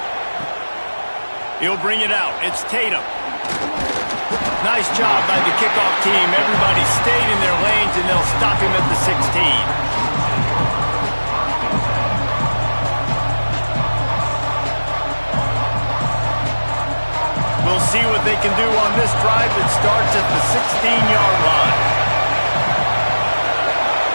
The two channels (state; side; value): inverted; both; correlation -1.00